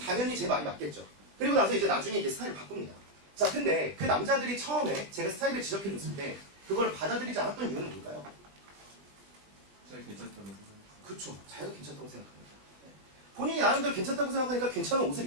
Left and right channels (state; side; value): late; left; 20 ms